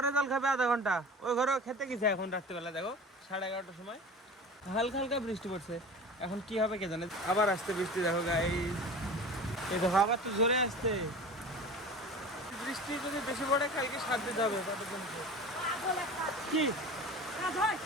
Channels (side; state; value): both; normal; correlation 0.37